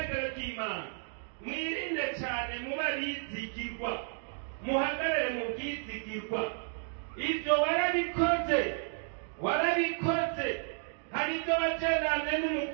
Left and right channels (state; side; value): silent; left; 56 dB below the other